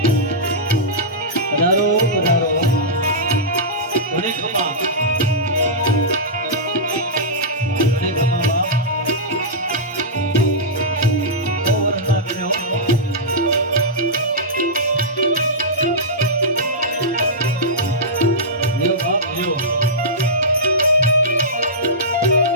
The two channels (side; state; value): both; normal; correlation -0.13